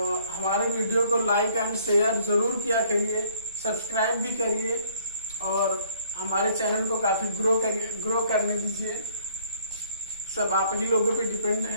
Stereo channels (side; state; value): both; inverted; correlation -0.62